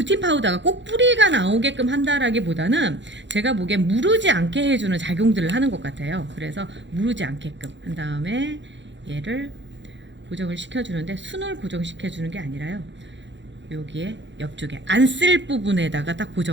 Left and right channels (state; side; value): late; left; 0.53 ms